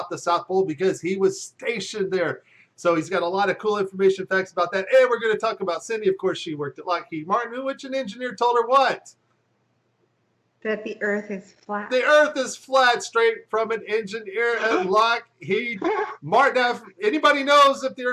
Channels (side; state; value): both; identical; correlation 1.00